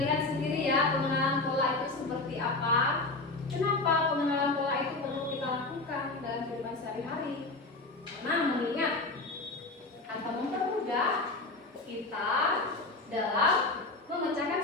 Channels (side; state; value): right; quieter; 3.3 dB